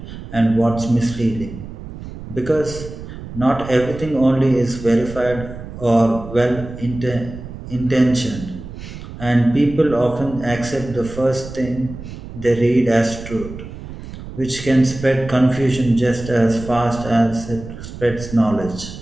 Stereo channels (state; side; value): noise; right; rumble, 12 dB below the sound